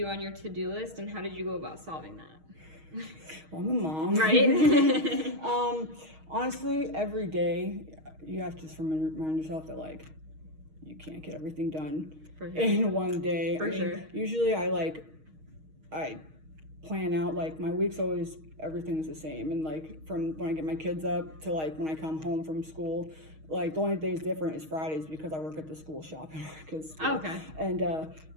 on your to-do list, and how did you go about solving that? well, I'm a mom. Right? Honestly, every day you have to just remind yourself that like you can't get everything done For sure. in one day. For sure. Usually I plan out like my week's always everything's the same, and like from when I get my kids up to like when I come home from school. Like the only days different is Fridays because I work at the school shop. Oh, okay. And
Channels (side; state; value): left; late; 6.4 ms